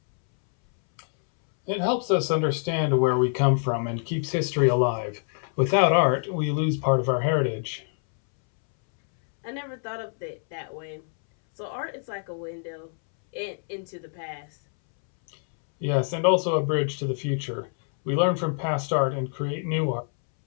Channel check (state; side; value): silent; right; 61 dB below the other